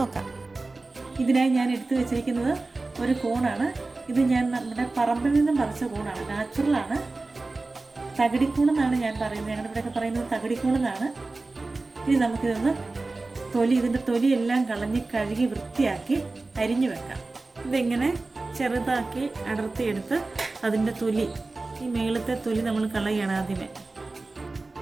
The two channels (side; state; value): left; quieter; 3.4 dB